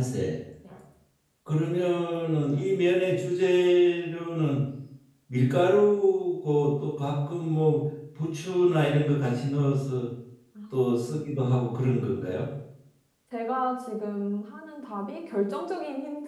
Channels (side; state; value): both; identical; correlation 1.00